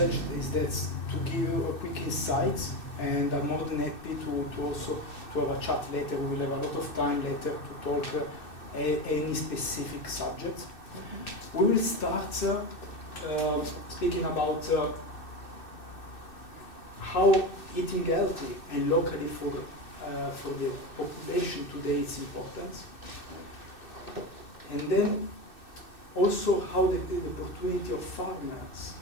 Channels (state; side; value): late; right; 2.6 ms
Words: is that to give you a quick insight, and I'm more than happy to also to have a chat later. We will have a lot of time later to talk any specific subject. We will start speaking about how eating healthy and locally for the population today is important, and then also how the opportunity of farmers